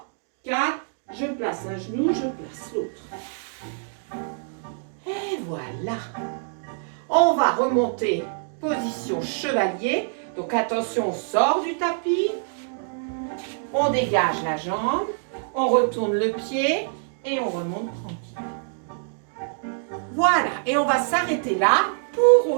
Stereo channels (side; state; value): left; silent; digital silence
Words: 4. Je place un genou, je place l'autre. Et voilà. On va remonter. Position chevalier. Donc attention, on sort du tapis. On dégage la jambe. On retourne le pied. Et on remonte tranquille. Voilà. Et on va s'arrêter là pour